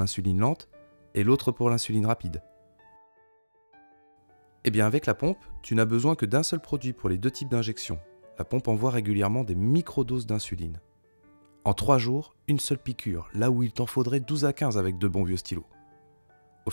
lente et l'autre pour l'insuline rapide. Eh bien, avec la pompe, tu n'as besoin que d'un seul produit pour les deux types d'injections. La pompe envoie régulièrement des microdoses d'insuline. En 3 jours, une seule piqûre, là où il t'en faudrait 12 à 15 avec de bons vieux stylos. Au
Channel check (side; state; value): both; inverted; correlation -1.00